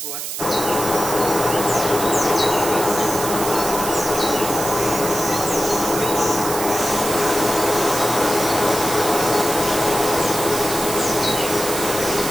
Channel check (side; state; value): right; noise; hiss, 5 dB below the sound